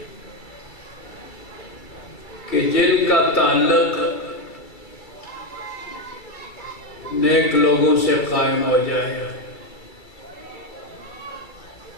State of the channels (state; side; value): late; right; 2.3 ms